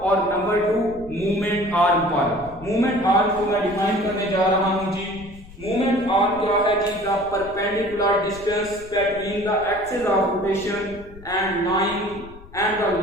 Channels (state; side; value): noise; left; rumble, 18 dB below the sound